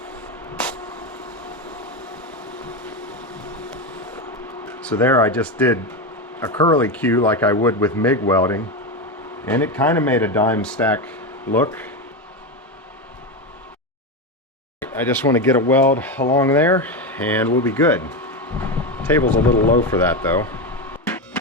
So there I just did a curly Q like I would with MIG welding, and it kind of made a dime stack look. I just want to get a weld along there and we'll be good. Table's a little low for that though.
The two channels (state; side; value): normal; both; correlation 0.14